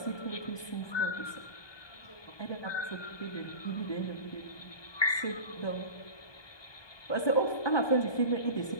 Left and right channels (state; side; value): late; right; 1.2 ms